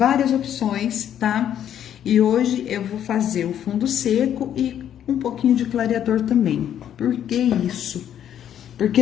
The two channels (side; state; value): right; quieter; 10.1 dB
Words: opções, tá? E hoje eu vou fazer o fundo seco e um pouquinho de clareador também. Por que isso? Porque